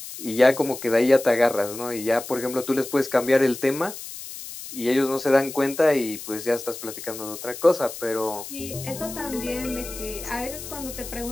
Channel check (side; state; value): left; noise; hiss, 11 dB below the sound